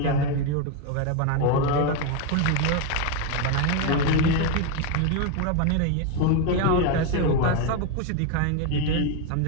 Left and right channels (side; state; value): both; different; correlation 0.02